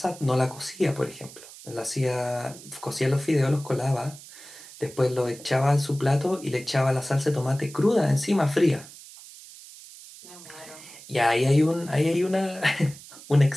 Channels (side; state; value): right; noise; hiss, 18 dB below the sound